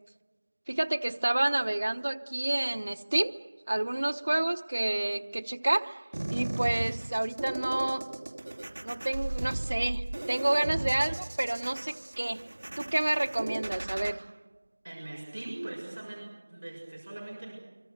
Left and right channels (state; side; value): inverted; both; correlation -1.00